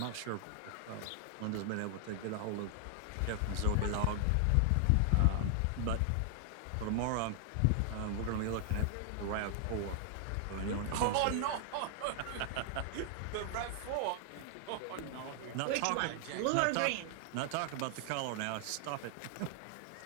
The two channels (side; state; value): both; different; correlation 0.00